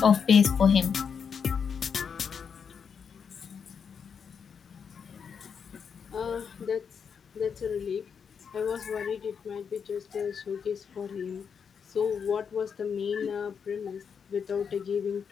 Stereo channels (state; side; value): quieter; right; 6.7 dB